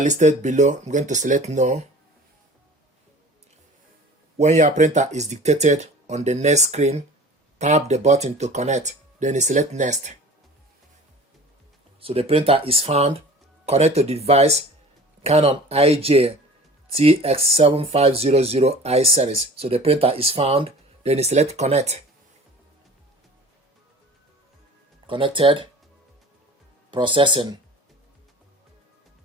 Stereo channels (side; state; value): both; normal; correlation 0.43